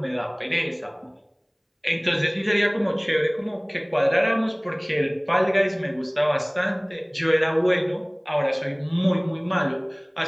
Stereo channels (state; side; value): identical; both; correlation 1.00